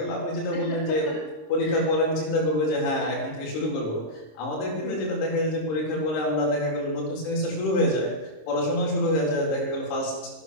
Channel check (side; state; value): right; late; 26 ms